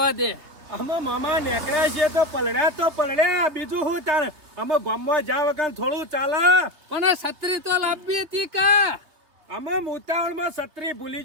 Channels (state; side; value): late; left; 3.3 ms